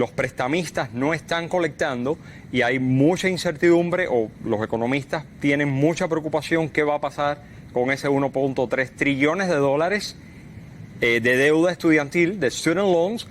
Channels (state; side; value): identical; both; correlation 1.00